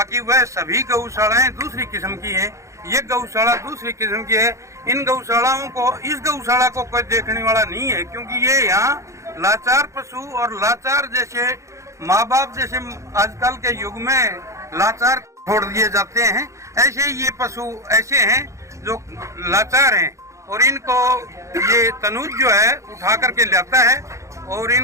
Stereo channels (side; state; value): left; late; 0.15 ms